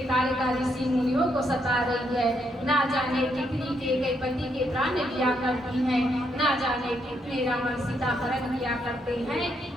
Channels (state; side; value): normal; both; correlation 0.76